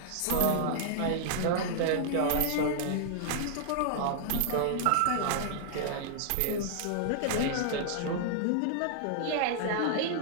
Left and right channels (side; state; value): both; different; correlation -0.01